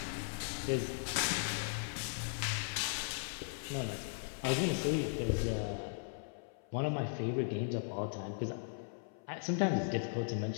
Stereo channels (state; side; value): silent; right; 53 dB below the other